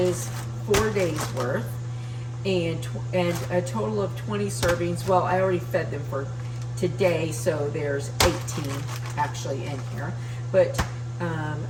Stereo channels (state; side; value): identical; both; correlation 1.00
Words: 4 days worth, and a total of 20 servings. Well, I already fed them for today, so there's 18 actually in here. But